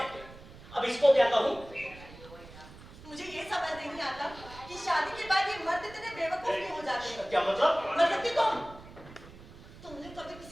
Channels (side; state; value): right; noise; rumble, 18 dB below the sound